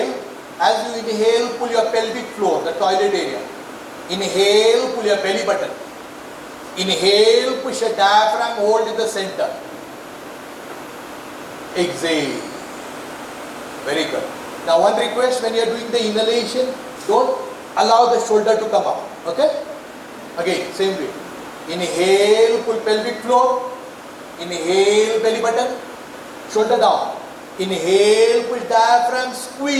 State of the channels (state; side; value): identical; both; correlation 1.00